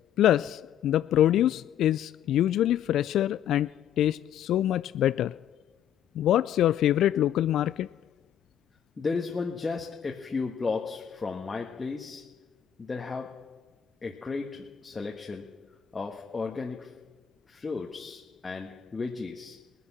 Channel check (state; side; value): quieter; right; 9.9 dB